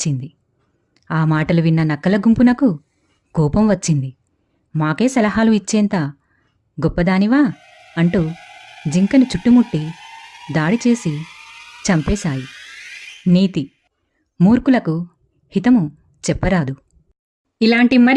ఆ మాటలు విన్న నక్కల గుంపునకు కోపం వచ్చింది. మాకే సలహాలు ఇచ్చేంత గొప్పదానివా అంటూ జింకను చుట్టుముట్టి దాడి చేసి చంపేశాయి. నీతి: మూర్ఖులకు హితము చెప్పరాదు. ఇలాంటి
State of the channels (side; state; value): both; identical; correlation 1.00